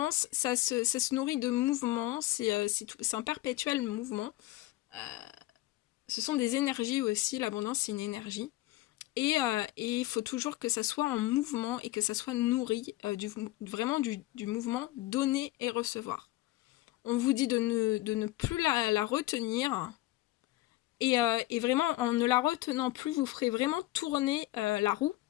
ça se nourrit de mouvements, c'est un perpétuel mouvement. Ce sont des énergies aussi, l'abondance c'est une énergie. Et il faut toujours que ça soit en mouvement et que ça soit nourri vraiment du mouvement donner et recevoir. On vous dit de ne plus la retenir. Et vraiment, en ne la retenant plus, vous ferez vraiment tourner la roue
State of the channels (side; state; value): right; quieter; 17.6 dB